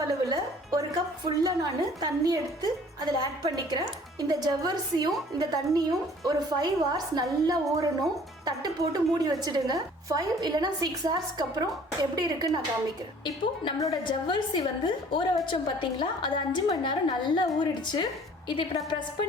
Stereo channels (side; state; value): both; normal; correlation 0.52